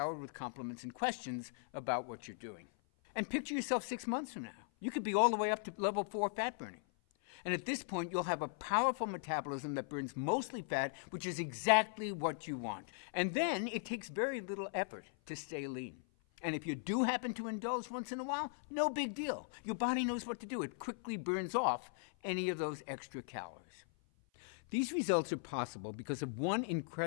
with compliments and questions about what you're doing. And picture yourself 6 months from now. You could be all the way up to level 4 fat burning. And at this point, you'll have a powerful metabolism that burns mostly fat, which is exactly what you want. And then it takes very little effort to stay lean. And if you do happen to indulge once in a while, no big deal. Your body knows what to do. It quickly burns off any of those extra calories. These results are possible because of one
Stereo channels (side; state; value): right; silent; 52 dB below the other